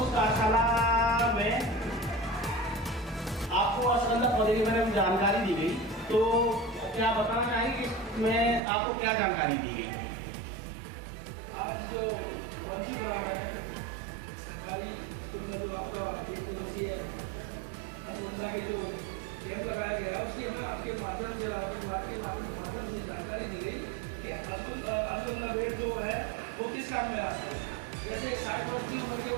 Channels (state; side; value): drops out; left; at 8.6 s